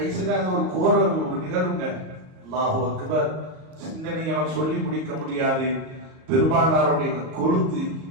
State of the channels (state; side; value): late; left; 38 ms